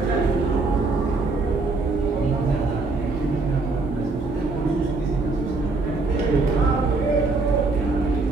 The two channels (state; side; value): quieter; left; 3.6 dB